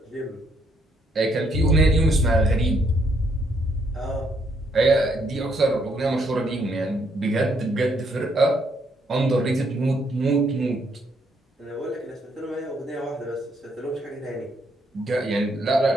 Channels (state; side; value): normal; both; correlation 0.72